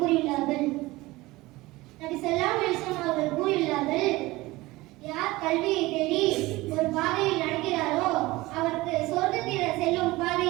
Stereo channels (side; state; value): left; quieter; 20.0 dB